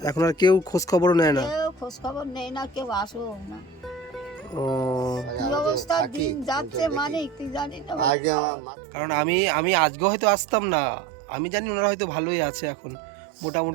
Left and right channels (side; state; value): left; drops out; at 8.1 s